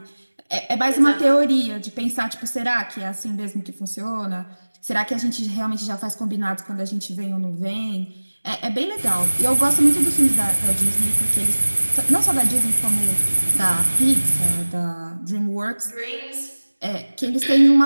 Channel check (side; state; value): both; inverted; correlation -1.00